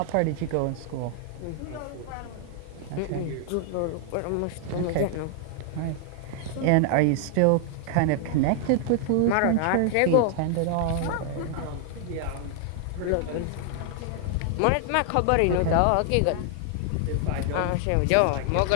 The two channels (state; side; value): different; both; correlation 0.00